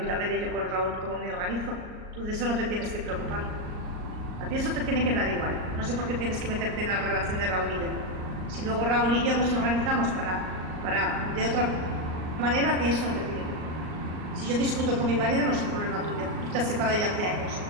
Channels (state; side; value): late; left; 38 ms